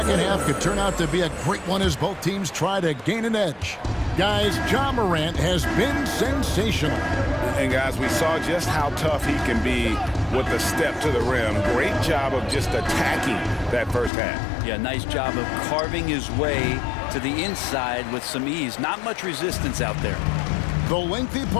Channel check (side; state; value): right; drops out; at 14.1 s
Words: half could turn out to be a great one as both teams try to gain an edge. Guys, Ja Morant has been sensational. And guys, we saw just how tough he can be with the step to the rim. Great job of just attacking that first half. Yeah, nice job of carving his way to the inside with some ease. Not much resistance out there. The lengthy